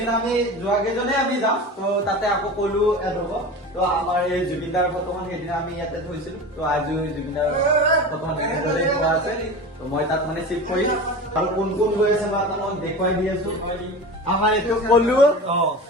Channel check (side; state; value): both; normal; correlation 0.31